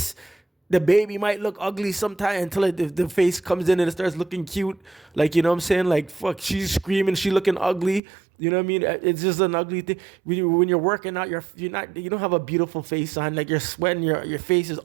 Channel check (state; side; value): drops out; left; at 8.0 s